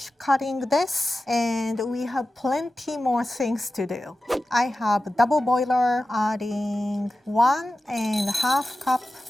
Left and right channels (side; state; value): both; normal; correlation 0.94